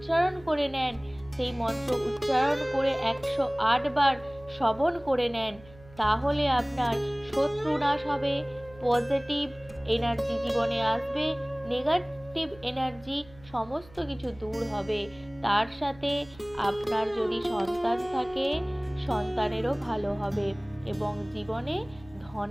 করে নেন, সেই মন্ত্র উচ্চারণ করে 108 বার শ্রবণ করে নেন, তাহলে আপনার শত্রু নাশ হবে, পজিটিভ এনার্জি জীবনে আসবে, নেগেটিভ এনার্জি সমস্ত কিছু দূর হবে। তার সাথে আপনার যদি সন্তান থাকে, সন্তানেরও ভালো হবে এবং জীবনে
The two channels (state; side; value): noise; right; hum, 22 dB below the sound